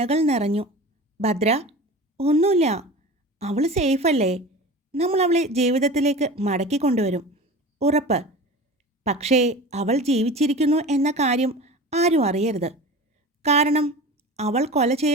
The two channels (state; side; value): normal; both; correlation 0.34